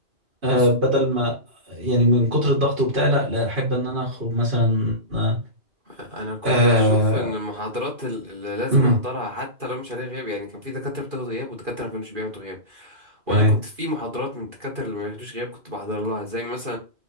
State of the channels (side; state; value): left; late; 2.5 ms